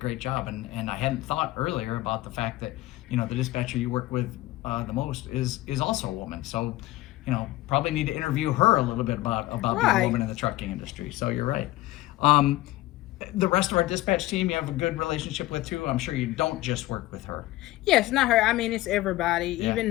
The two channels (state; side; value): quieter; right; 17.4 dB